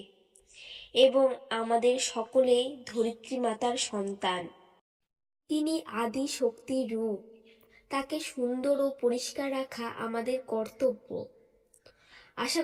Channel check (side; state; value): both; identical; correlation 1.00